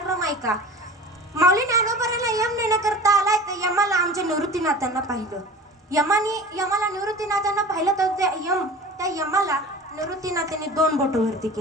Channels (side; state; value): both; normal; correlation 0.37